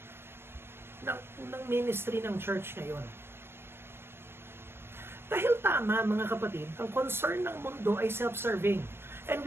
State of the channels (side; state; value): left; late; 0.12 ms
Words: ng ministry ng church ngayon. Dahil tama, mga kapatid, ang concern ng mundo ay self-serving. And